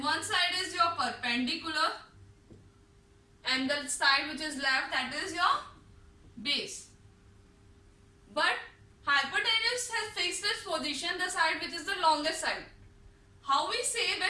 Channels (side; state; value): both; identical; correlation 1.00